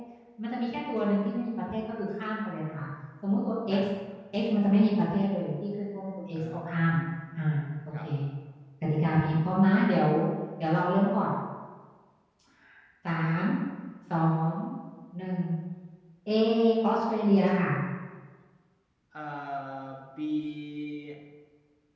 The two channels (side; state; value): both; identical; correlation 1.00